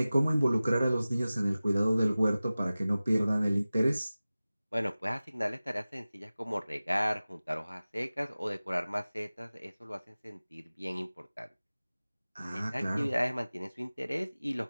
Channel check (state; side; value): inverted; both; correlation -0.97